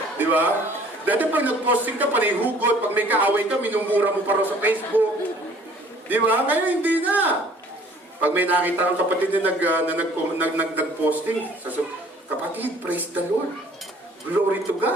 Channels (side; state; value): both; normal; correlation 0.55